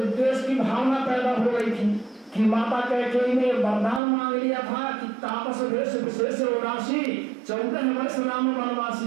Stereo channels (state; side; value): drops out; left; at 4.0 s